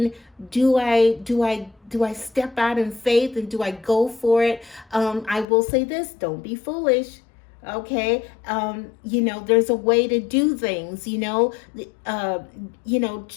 do I do I step out in faith and do I go for it? I will say this: don't be foolish. Okay, there's a way to do things. You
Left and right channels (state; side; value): drops out; right; at 5.5 s